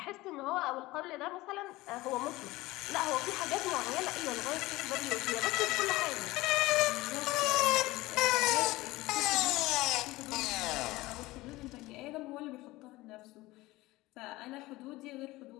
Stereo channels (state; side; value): quieter; right; 19.3 dB